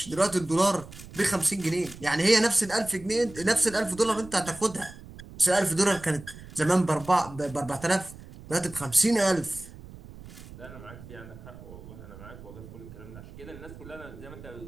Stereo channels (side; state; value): right; noise; rumble, 16 dB below the sound